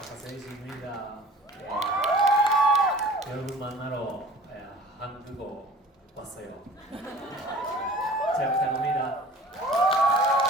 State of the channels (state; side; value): normal; both; correlation 0.46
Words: 여러분 만나러 한국어 왔어요. 잘 부탁합니다.